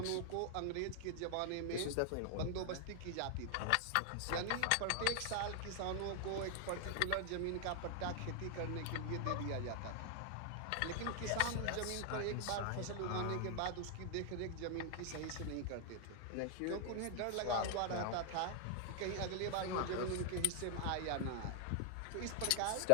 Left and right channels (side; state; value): both; different; correlation 0.00